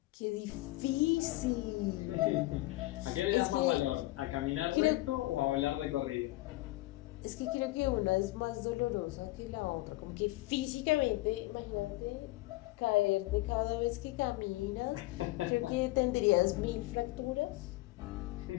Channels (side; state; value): right; quieter; 19.3 dB